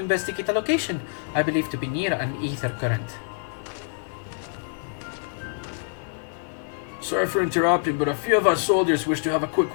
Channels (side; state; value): right; silent; 55 dB below the other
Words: a location I believe to be near an ether current. Sorry for interrupting, but a few of our soldiers wish to have a